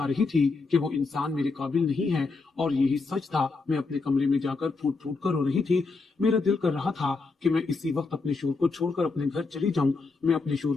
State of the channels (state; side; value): quieter; right; 4.0 dB